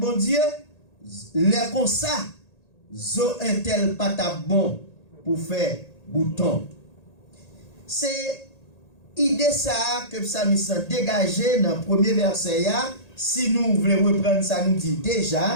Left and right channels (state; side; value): late; right; 1.8 ms